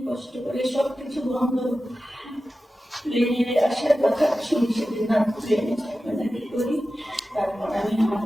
কষ্ট করে, সবকিছু বন্ধ, প্লেনে আসার কথা শুনি সেদিন না, প্লেনে থাকবে না কি করি। তারপর আমি আমার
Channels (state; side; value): normal; both; correlation 0.94